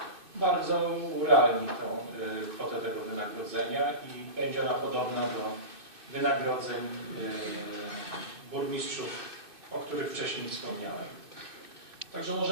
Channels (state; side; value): late; left; 2.6 ms